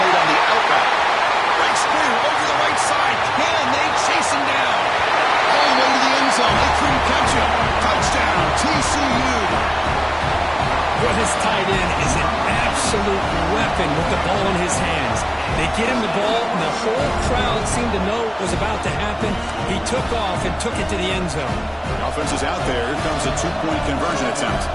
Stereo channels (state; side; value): identical; both; correlation 1.00